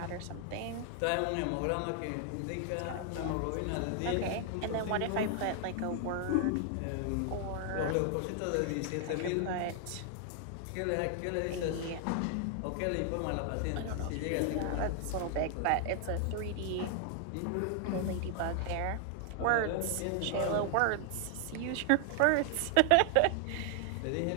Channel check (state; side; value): different; both; correlation 0.00